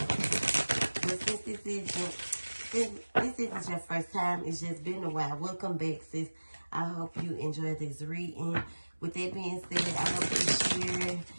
since this isn't your first time, it's just been a while. Welcome back, sis. I hope you enjoyed this reading. With that being said, I hope you share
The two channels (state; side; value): inverted; both; correlation -1.00